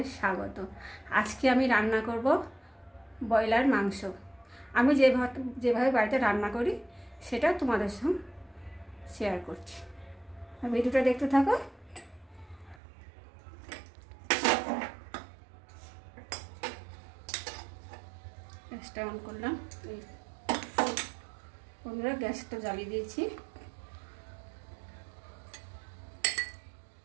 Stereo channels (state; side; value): drops out; left; at 12.8 s